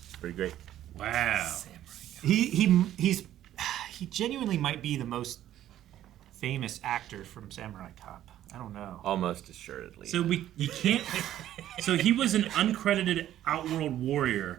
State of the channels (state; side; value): quieter; left; 12.3 dB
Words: Pretty great. Wow. He genuinely might be the most famous actor from Samurai Cop. I don't know. Almost assuredly. So you can't. So he was an uncredited Outworld